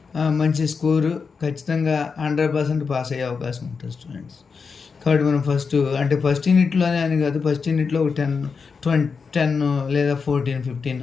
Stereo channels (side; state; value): right; quieter; 5.3 dB